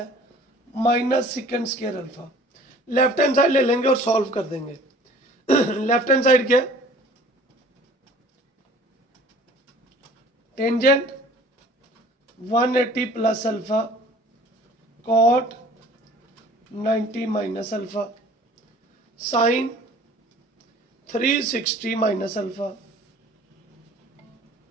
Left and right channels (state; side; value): normal; both; correlation 0.49